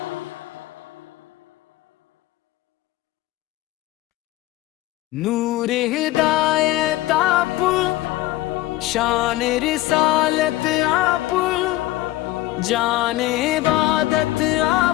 نور ہدایت آپ شان رسالت آپ جان عبادت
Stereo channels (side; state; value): right; quieter; 16.9 dB